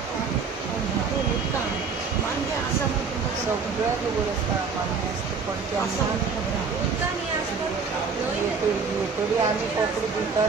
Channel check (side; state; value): left; quieter; 5.2 dB